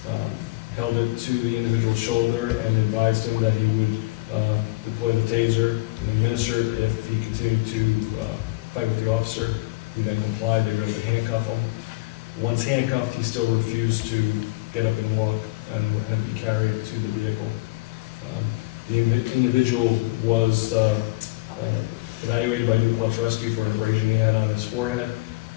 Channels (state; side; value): quieter; right; 22.0 dB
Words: held it to the individual's shoulder, and advised him that he would deploy the taser and administer it if he continued to fight with the officer. He then complied. They were able to handcuff him. Once handcuffed, he still refused to get up and walk and had to be carried to the vehicle. The individual was evaluated by New Paltz Rescue for an abrasion he had on his forehead,